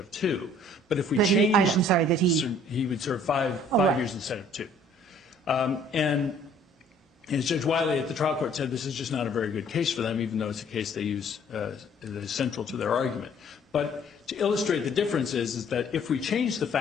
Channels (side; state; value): both; normal; correlation 0.57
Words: 2. But if we changed, I'm sorry, that he would serve five years instead of 2. And as Judge Wiley at the trial court said, this is just not a very good case for them, even though it's a case they use that is central to their argument. But to illustrate the difference is that if we change the